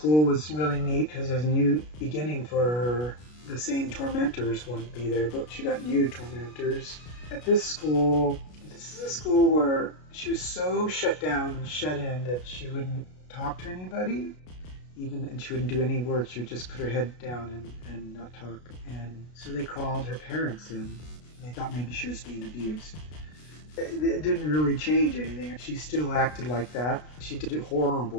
was really neat because there's a new beginning for her. The same tormentors wouldn't be there, but she got new tormentors. At this school, this is a school where she was so shut down and shut in that she wouldn't talk to anybody, and she wouldn't do any work. She would just put her head down and not talk. And so they called her parents in. They thought maybe she was being abused. It didn't really change anything. She still acted like that. She did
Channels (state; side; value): late; right; 33 ms